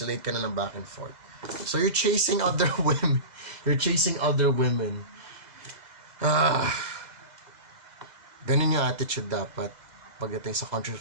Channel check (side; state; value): left; late; 2.0 ms